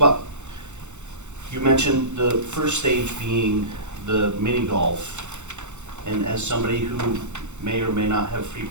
you mentioned the first stage being the mini golf, and as somebody who may or may not have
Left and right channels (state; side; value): late; left; 0.83 ms